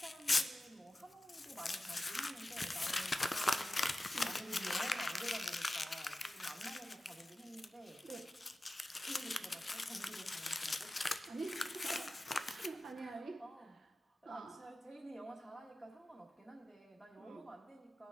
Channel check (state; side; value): normal; both; correlation 0.95